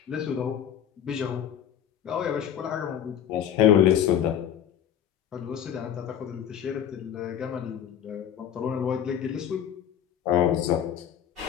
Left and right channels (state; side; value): quieter; right; 9.7 dB